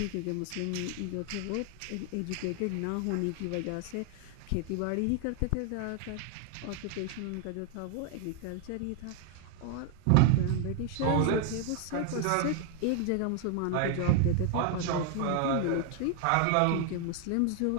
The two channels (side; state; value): both; different; correlation 0.01